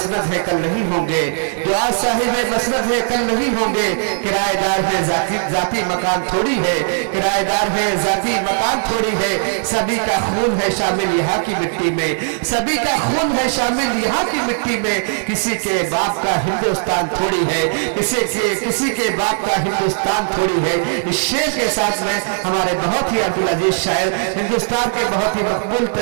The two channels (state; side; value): silent; left; 60 dB below the other